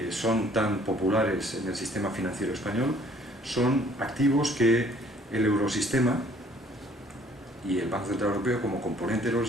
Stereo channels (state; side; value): normal; both; correlation 0.59